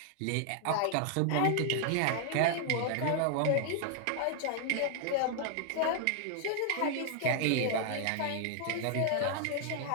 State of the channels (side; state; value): both; different; correlation 0.00